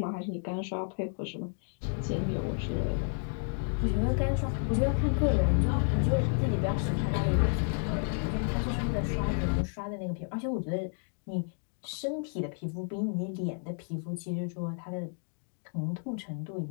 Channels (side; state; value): right; silent; 57 dB below the other